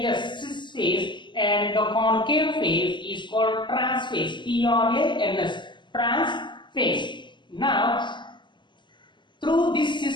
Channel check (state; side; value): late; right; 0.22 ms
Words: cis phase, and the concave phase is called trans phase, T-R-A-N-S, trans phase. Now, through this